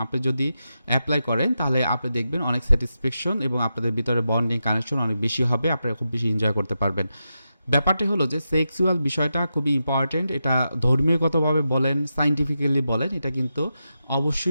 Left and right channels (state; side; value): inverted; both; correlation -0.88